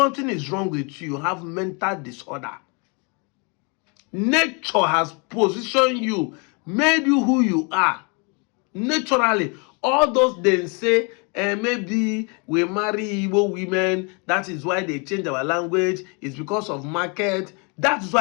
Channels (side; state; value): right; quieter; 33.2 dB